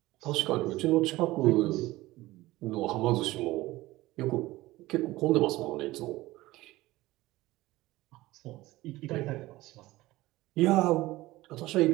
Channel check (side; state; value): left; quieter; 18.2 dB